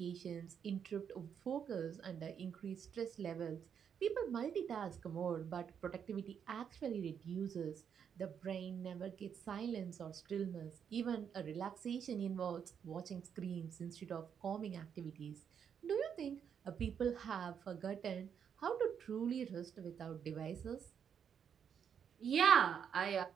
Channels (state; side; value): quieter; left; 7.8 dB